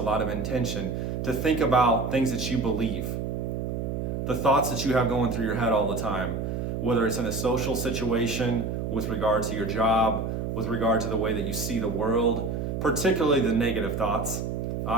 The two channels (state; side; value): noise; right; hum, 3 dB below the sound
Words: lot of intention to think about things that you believe, the thoughts that you have going through your head all the time, whether it's in a social situation, with regard to your job, with regard to the way that you see the world, particularly the negative thoughts.